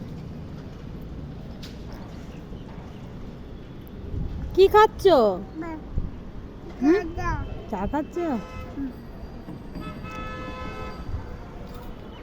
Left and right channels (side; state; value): both; identical; correlation 1.00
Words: কি খাচ্ছ? চা খাচ্ছ?